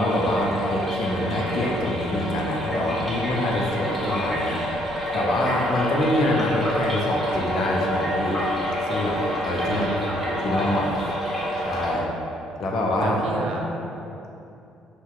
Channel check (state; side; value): normal; both; correlation 0.67